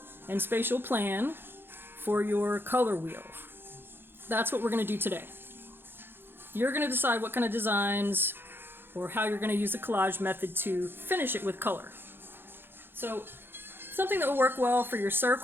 and spatial plan for your color wheel. That's what we're going to do today. You're going to decide what kind of designs or how you're going to use the collage method to finish it with color. So something that will work well for your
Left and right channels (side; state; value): left; late; 0.10 ms